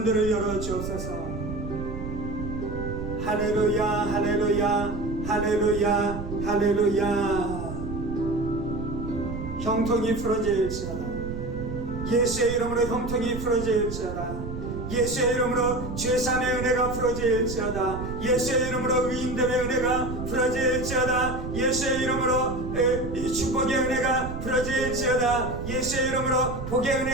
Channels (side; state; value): right; noise; rumble, 7 dB below the sound